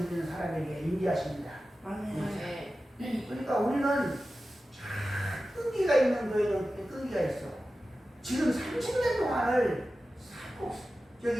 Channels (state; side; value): normal; both; correlation 0.94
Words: 드리는 사람에게 인지하십니다. 아멘. 그러니까 우리는 끈기가 있는 거에는 끈기가 있어. 지금 30년 동안을